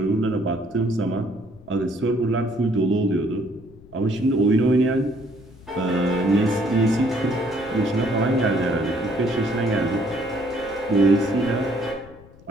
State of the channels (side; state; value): left; noise; rumble, 22 dB below the sound